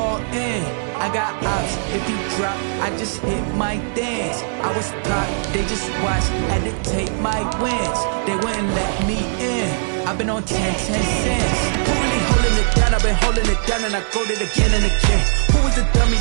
in. I got ops, if he drop, I just hit my dance. I was pop, they just watched, had to take my wins. They wouldn't let me in. I've been on 10 cents. Who really holding it down? I've been holding it down and I go it again and again. Who was the dummy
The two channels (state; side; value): silent; left; 66 dB below the other